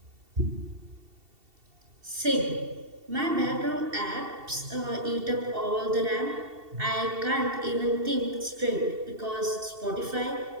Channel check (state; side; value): late; left; 2.7 ms